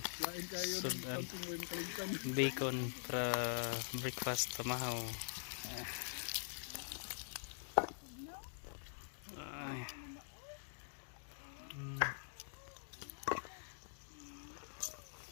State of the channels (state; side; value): silent; right; digital silence